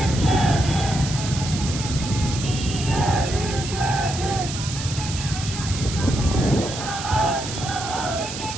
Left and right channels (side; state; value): right; noise; hiss, 8 dB below the sound